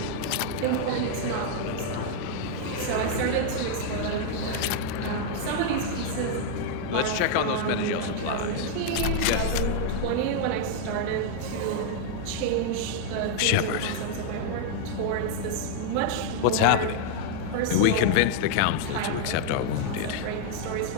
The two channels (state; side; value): different; both; correlation 0.00